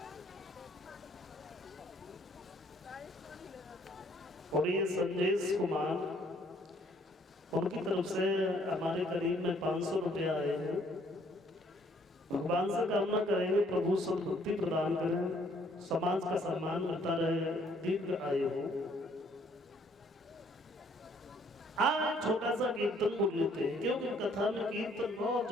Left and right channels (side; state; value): both; normal; correlation 0.63